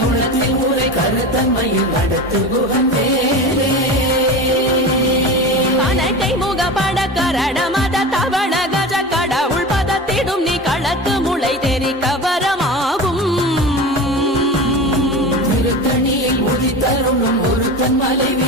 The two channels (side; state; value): both; normal; correlation 0.29